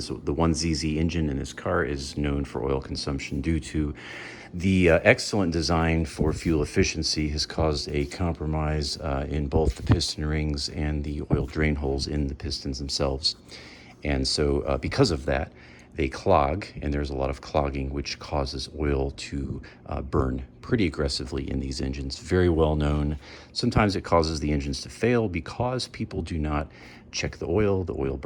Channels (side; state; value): both; identical; correlation 1.00